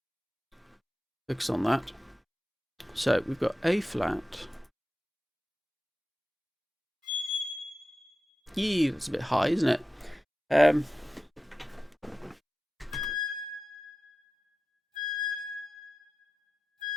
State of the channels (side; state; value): both; normal; correlation 0.93